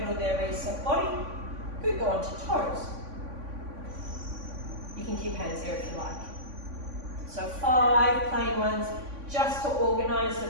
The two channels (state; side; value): late; left; 3.5 ms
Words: there, reset body. Good, go on to toes. You can keep hands there if you like. So 5 plain ones, just to organize the